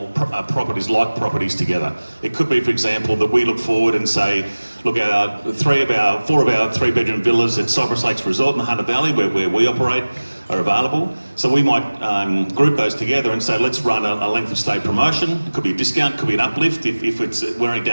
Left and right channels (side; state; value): both; inverted; correlation -1.00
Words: properties like properties together. It could be, for example, that we look forward and say, look, 4 of our 3-bedroom villas at Cypress Lakes Resort in the Hunter Valley, where we operate, are available. So we might group those together and say, let's run a length of stay promotion. It could be a discount, could be an uplift if it's wearing